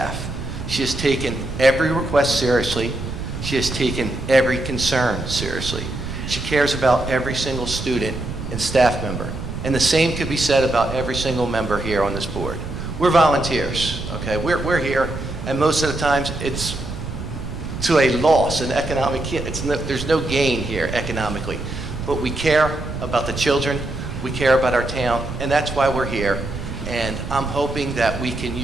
She has taken every request seriously. She has taken every concern seriously. She cares about every single student and staff member. And the same could be said about every single member here on this board. We're volunteers, okay? We're here, and most of the times it's to a loss, an economic, there's no gain here economically. But we care about the children, we care about our town, and that's why we're here. and I'm hoping that we can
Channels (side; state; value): right; noise; rumble, 7 dB below the sound